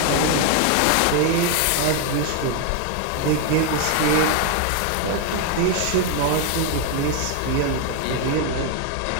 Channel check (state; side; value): different; both; correlation 0.01